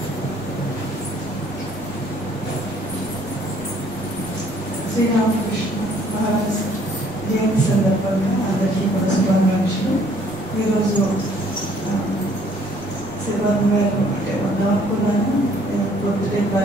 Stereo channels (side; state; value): right; noise; rumble, 22 dB below the sound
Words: శ్రీరామకృష్ణ మహారాజ్ జయంతి సందర్భంగా అందరికీ కూడా శుభాకాంక్షలు. ఈరోజు శివన్ గారు అంటే వద్దాం అనుకున్నాను, పొద్దుటే